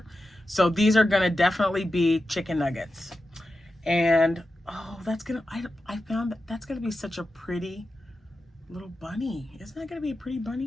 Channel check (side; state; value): both; normal; correlation 0.91